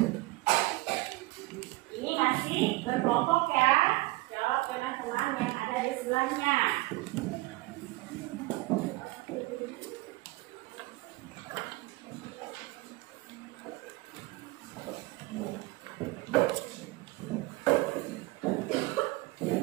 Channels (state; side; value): quieter; left; 21.0 dB